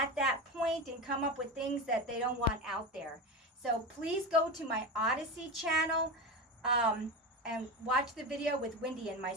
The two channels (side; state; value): both; normal; correlation 0.22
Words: that point and come up with things that they don't want out there. So please go to my Odyssey channel and watch the video with Wendy and